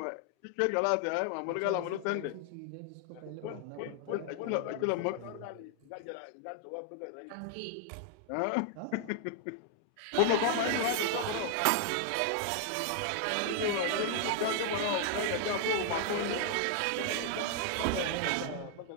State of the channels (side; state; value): both; different; correlation 0.00